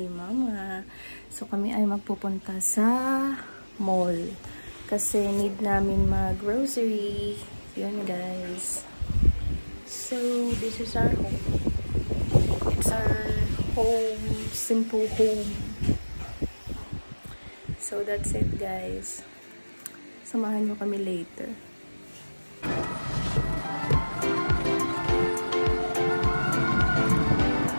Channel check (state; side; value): inverted; both; correlation -1.00